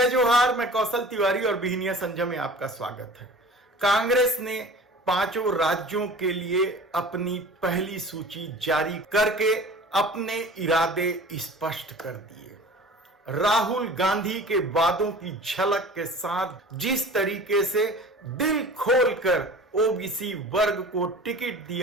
जोहार। मैं कौशल तिवारी और बिहनिया संजय में आपका स्वागत है। कांग्रेस ने 5 राज्यों के लिए अपनी पहली सूची जारी करके अपने इरादे स्पष्ट कर दिए। राहुल गांधी के वादों की झलक के साथ जिस तरीके से दिल खोलकर ओबीसी वर्ग को टिकट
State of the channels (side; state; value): both; normal; correlation 0.42